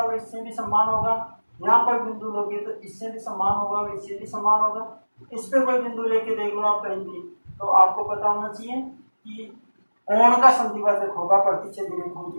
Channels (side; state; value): both; inverted; correlation -1.00